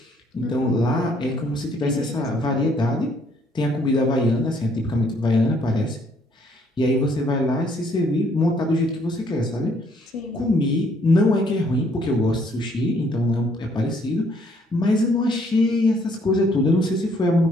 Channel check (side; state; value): both; normal; correlation 0.66